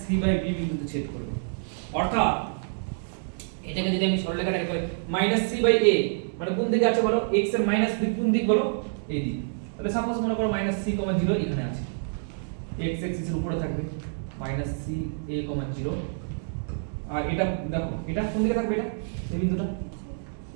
c by b বিন্দুতে ছেদ করবে। অর্থাৎ এটাকে যদি আমি সরলরেখাটাকে করি মাইনাস c বাই a মানে কোন দিকে আছে বলো? x এর মাইনাস দিক কোন দিক বলো? এই দিক। তাহলে সাপোজ মনে করো মাইনাস c কমা 0 এখানে আছে, x এক্সিসের উপরে থাকবে মাইনাস c a কমা 0, আর এটা দেখো এটা কোন দিকে থাকবে? এটা এই বিন্দুটা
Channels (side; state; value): left; silent; digital silence